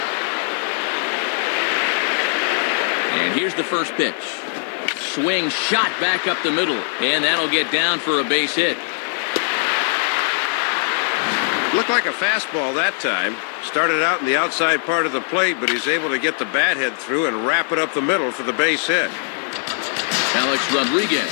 And here's the first pitch. Swing shot back up the middle, and that'll get down for a base hit. Looked like a fastball that time. Started out in the outside part of the plate, but he's able to get the bat head through and wrap it up the middle for the base hit. Alex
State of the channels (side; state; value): right; silent; 59 dB below the other